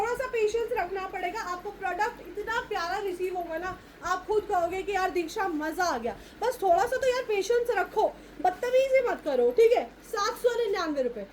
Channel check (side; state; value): both; identical; correlation 1.00